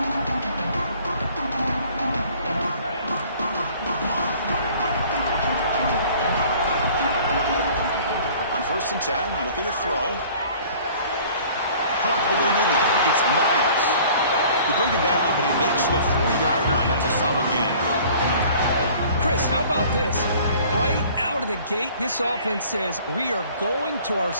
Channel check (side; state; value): both; inverted; correlation -0.51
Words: On 1st and 10, looking to throw. Pump over the middle. It's Miles. You bring him down, but he makes the 4-yard line. That's a solid gain. Chris, how about this? Right out of the gate, this offense says we are going to our